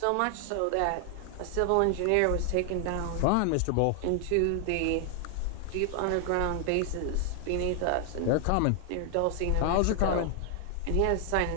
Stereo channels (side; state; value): both; different; correlation 0.00